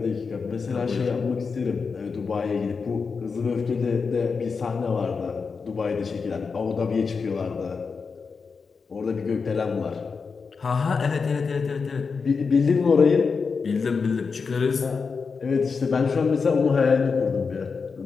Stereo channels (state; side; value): quieter; right; 5.1 dB